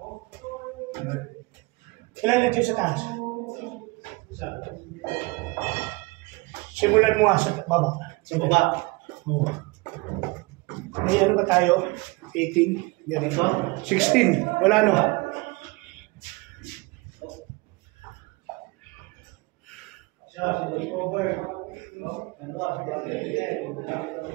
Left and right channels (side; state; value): left; quieter; 24.6 dB